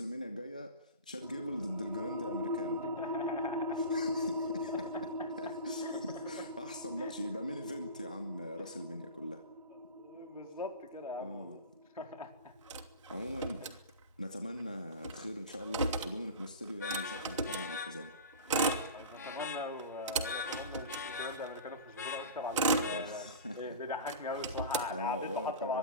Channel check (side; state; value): both; inverted; correlation -0.31